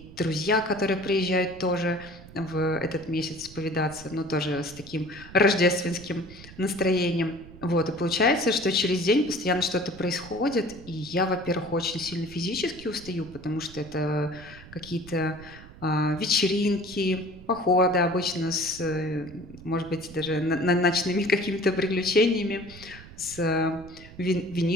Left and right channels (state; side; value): noise; right; rumble, 18 dB below the sound